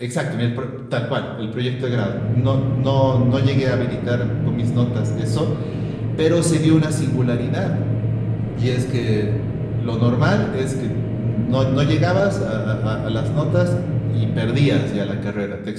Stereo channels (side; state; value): both; identical; correlation 1.00